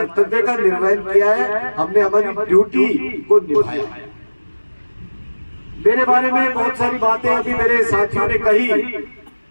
का निर्वहन किया है, हमने हमारी ड्यूटी को निभाया है। मेरे बारे में बहुत सारी बातें अभी मेरे साथियों ने कही।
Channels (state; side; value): inverted; both; correlation -1.00